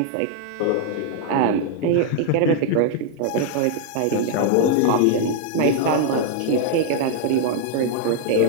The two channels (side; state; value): both; different; correlation -0.01